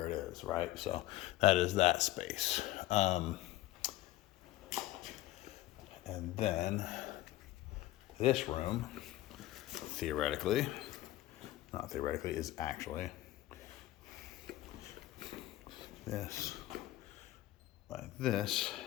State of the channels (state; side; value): quieter; right; 16.1 dB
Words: it is, right? So that is that space. And then this room, theoretically, not theoretically, is actually this, like this.